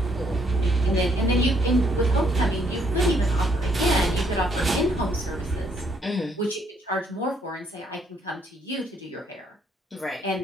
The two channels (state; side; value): normal; both; correlation 0.69